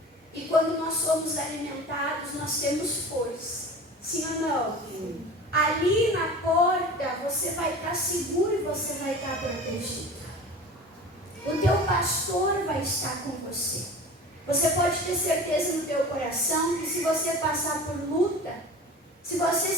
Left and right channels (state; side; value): normal; both; correlation 0.37